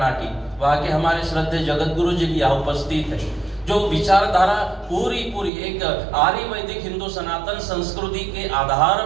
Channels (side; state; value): left; drops out; at 5.5 s